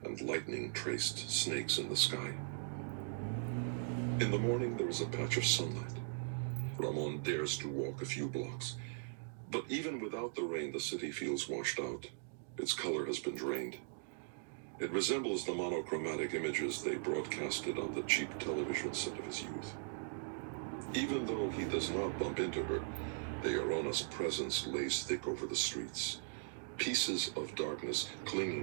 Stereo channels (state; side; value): silent; left; digital silence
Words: and lightning traced snakes in the sky. In the morning, there is a patch of sunlight. Ramon dares to walk a few blocks. But even without the rain, the city feels washed out. Its color has been drained. It resembles the monochromatic images they broadcasted on the cheap television set of his youth. Even though he does not bump into her, the Llorona's presence lays thick over the streets, pieces of darkness